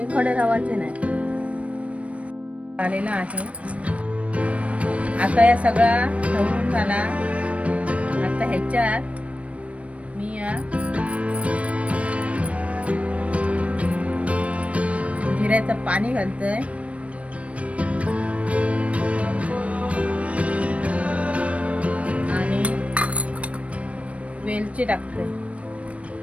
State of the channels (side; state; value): left; late; 0.064 ms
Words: खडे रावायचे नाही। आलेला आहे आता या सगळा ढवळून झाला। आता ह्याच्यात मी या जिऱ्याचं पाणी घालतोय आणि वेलची टाकतोय।